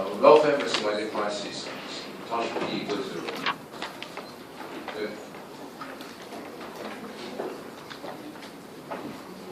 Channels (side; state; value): both; identical; correlation 1.00